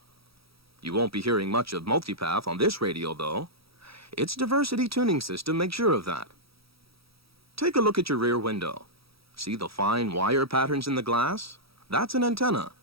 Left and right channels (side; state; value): left; late; 0.76 ms